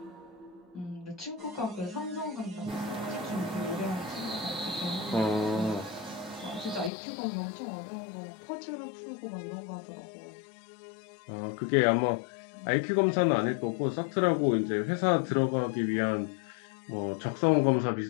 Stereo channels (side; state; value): right; drops out; at 6.9 s